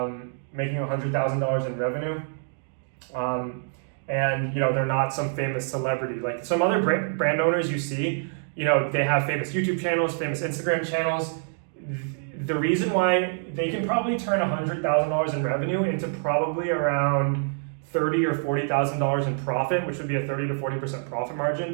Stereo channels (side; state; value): left; silent; digital silence